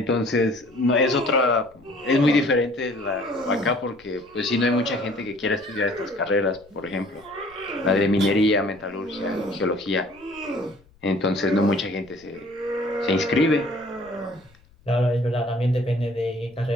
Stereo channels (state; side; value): noise; left; rumble, 29 dB below the sound